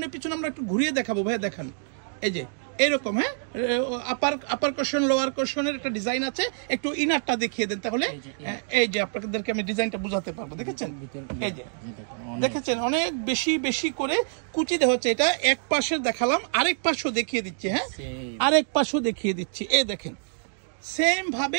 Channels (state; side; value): silent; left; digital silence